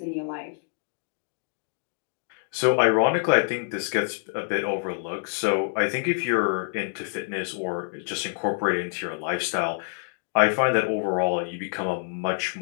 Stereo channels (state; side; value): silent; right; digital silence